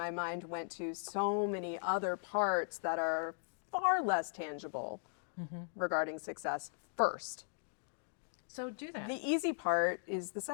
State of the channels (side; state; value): right; silent; digital silence